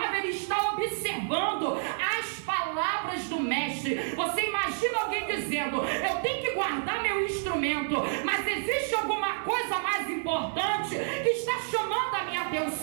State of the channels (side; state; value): left; silent; 58 dB below the other